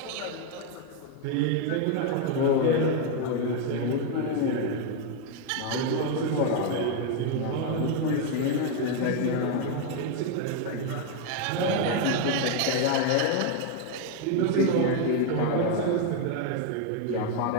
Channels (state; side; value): different; both; correlation 0.01